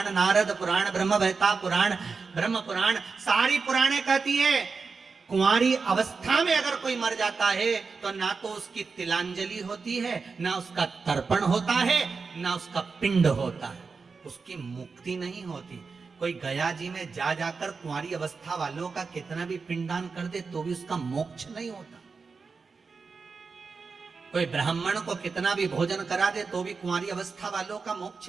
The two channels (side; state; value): left; quieter; 4.8 dB